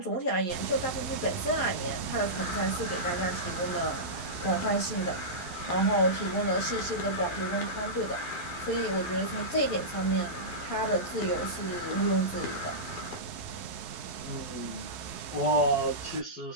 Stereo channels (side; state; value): right; late; 11 ms